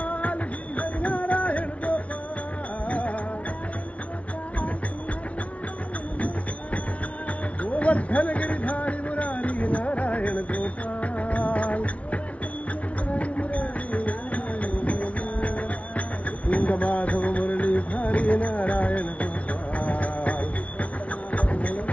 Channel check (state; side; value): late; right; 0.065 ms